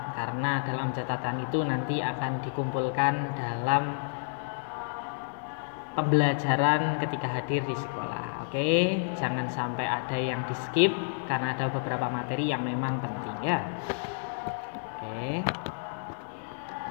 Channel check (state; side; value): silent; right; digital silence